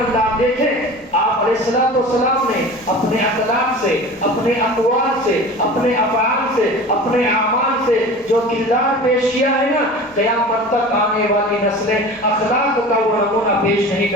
آپ دیکھیں آپ علیہ السلام نے اپنے اخلاق سے، اپنے اقوال سے، اپنے افعال سے، اپنے اعمال سے جو کردار پیش کیا ہے نا، قیامت تک آنے والی نسلیں اخلاق کا وہ نمونہ پیش نہیں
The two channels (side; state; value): left; noise; rumble, 29 dB below the sound